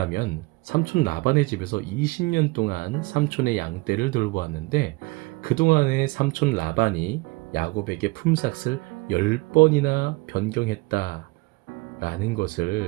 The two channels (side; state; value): left; quieter; 24.7 dB